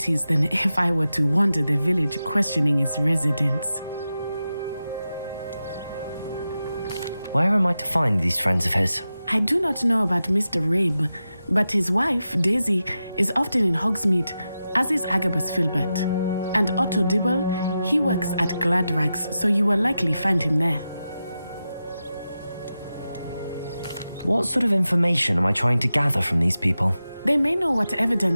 than if I were to wander the village questioning its residents. Where am I to find these friends of his? I do not know about Mr. Rabe, but his wife, Daisy, is often in Hogsmeade, as is Agabus Filbert. And Otto Dibble, he works at Gladrags, so you will likely find him there. What sort of information am I trying to gather from these people? They may know what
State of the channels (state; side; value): inverted; both; correlation -0.91